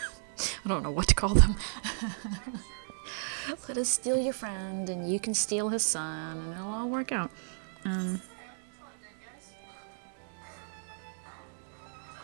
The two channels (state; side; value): silent; left; digital silence